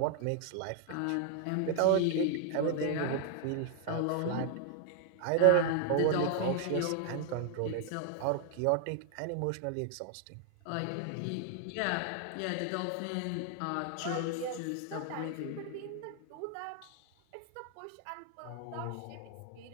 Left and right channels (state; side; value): different; both; correlation 0.00